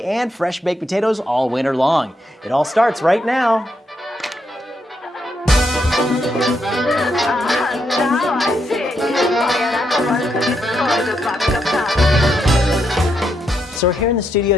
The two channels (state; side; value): normal; both; correlation 0.79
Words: and fresh baked potatoes all winter long. It all starts right now. So we're here in the studio